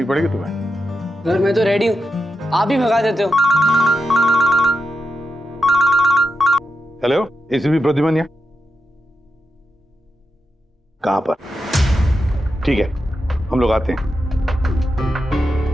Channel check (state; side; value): normal; both; correlation 0.87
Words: पड़ेगी तुम्हें। सर मैं तो रेडी हूँ, आप ही भगा देते हो। हेलो, एसीपी प्रद्युमन कहाँ पर? ठीक है, हम लोग आते हैं।